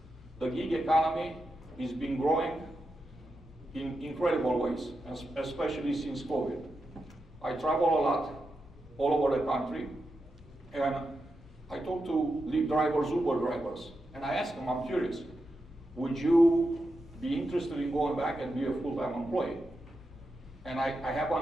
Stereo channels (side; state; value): both; normal; correlation 0.88